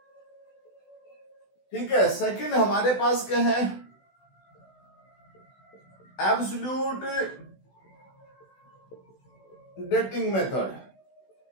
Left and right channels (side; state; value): right; late; 16 ms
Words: ठीक है। सेकंड हमारे पास क्या है, एब्सोल्यूट डेटिंग मेथड।